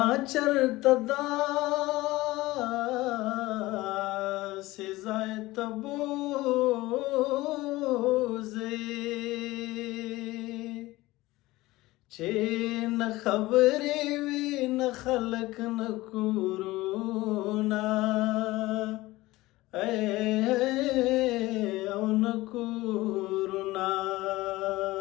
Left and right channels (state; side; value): quieter; right; 19.0 dB